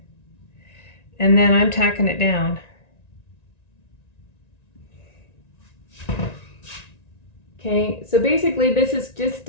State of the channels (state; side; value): late; right; 1.9 ms